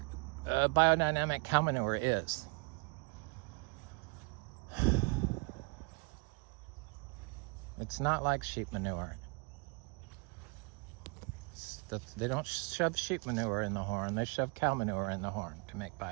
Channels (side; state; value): left; quieter; 30.1 dB